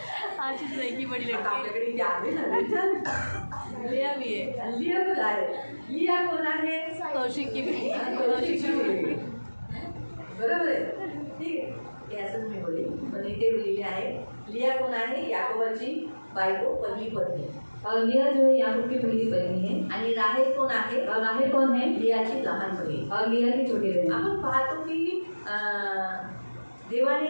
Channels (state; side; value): inverted; both; correlation -1.00